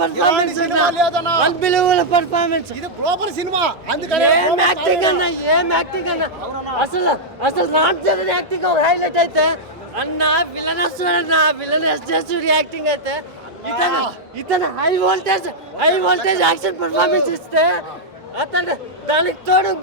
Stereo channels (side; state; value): both; normal; correlation -0.05